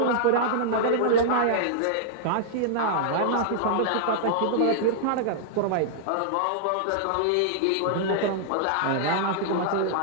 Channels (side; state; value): both; different; correlation -0.02